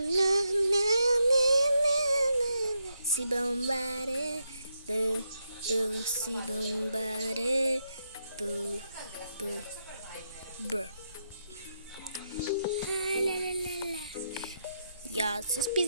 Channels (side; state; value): both; inverted; correlation -0.81